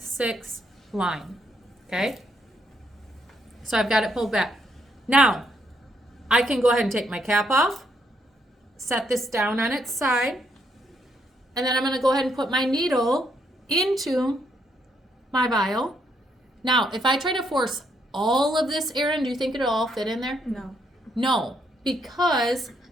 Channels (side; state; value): both; normal; correlation 0.74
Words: line. Okay? So I've got it pulled back. Now, I can go ahead and take my cap off, set this down on its side, and then I'm going to go ahead and put my needle into my vial. Now, if I try to force all of this air in, do you think it'll all fit in there? No. No, because